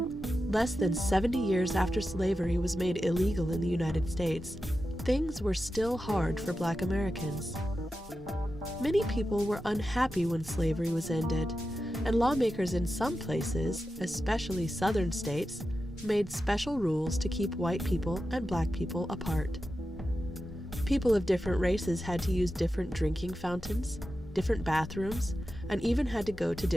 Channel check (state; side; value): normal; both; correlation 0.91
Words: less than 70 years after slavery was made illegal in the United States, things were still hard for Black Americans. Many people were unhappy when slavery was ended, and lawmakers in some places, especially southern states, made special rules to keep white people and Black people apart. People of different races had to use different drinking fountains, different bathrooms, and even had to go to